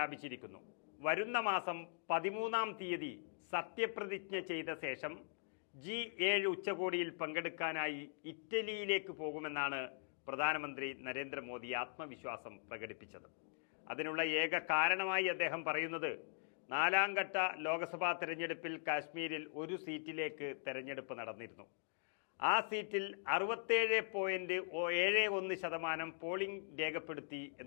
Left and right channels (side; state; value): right; silent; digital silence